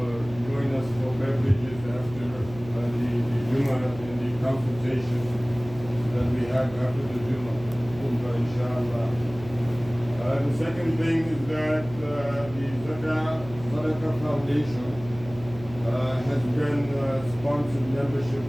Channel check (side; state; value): right; noise; hum, 15 dB below the sound